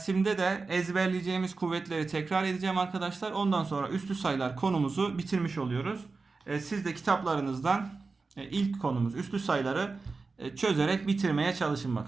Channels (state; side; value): quieter; left; 4.1 dB